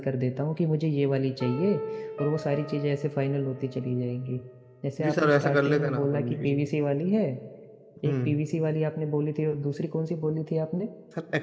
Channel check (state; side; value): identical; both; correlation 1.00